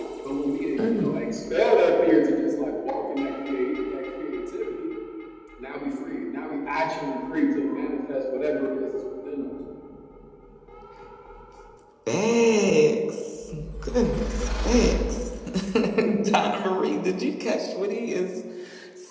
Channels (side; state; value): both; identical; correlation 1.00